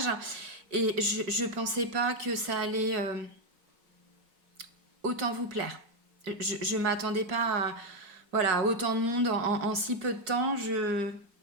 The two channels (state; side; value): late; left; 4.7 ms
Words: et je pensais pas que ça allait autant vous plaire. Je m'attendais pas à voilà, autant de monde en si peu de temps.